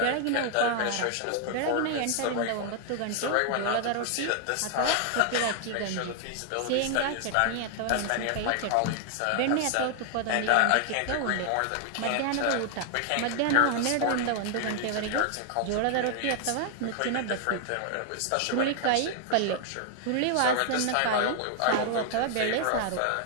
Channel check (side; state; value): both; different; correlation 0.00